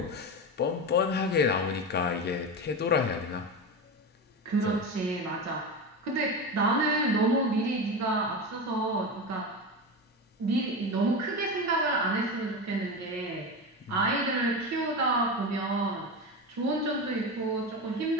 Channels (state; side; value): normal; both; correlation 0.21